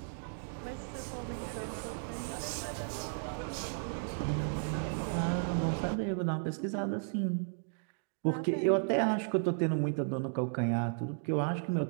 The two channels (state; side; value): silent; left; digital silence